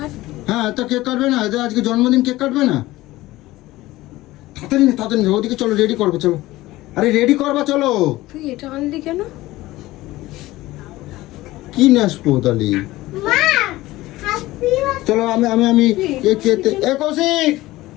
হ্যাঁ তা কেক কাটবে না, এদের আজকে জন্মদিন, কেক কাটবে না? তাড়াতাড়ি ওদিকে চলো, রেডি করবো চলো। আরে রেডি করবা চলো। তুই এটা আনলি কেন? কি নেসবো তাহলে, চলো আমি আমি আমি কৌশিক,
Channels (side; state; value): right; quieter; 17.8 dB